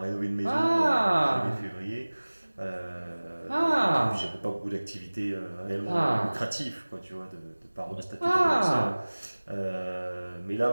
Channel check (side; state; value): both; inverted; correlation -1.00